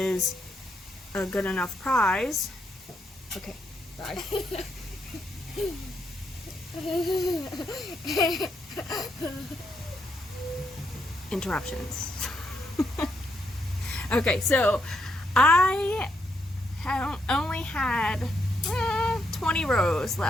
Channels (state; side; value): normal; both; correlation 0.78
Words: a good enough prize. Okay, bye. Interruptions. Okay, so I only had 20 rows